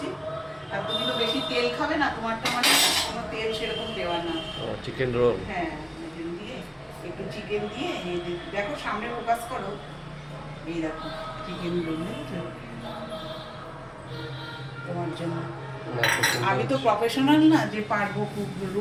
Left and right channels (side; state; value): both; identical; correlation 1.00